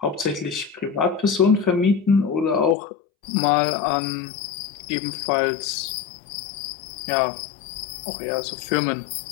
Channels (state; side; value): drops out; right; at 2.8 s